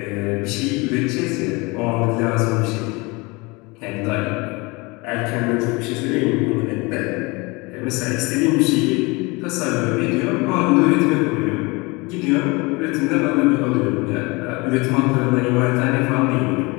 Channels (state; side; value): quieter; right; 25.8 dB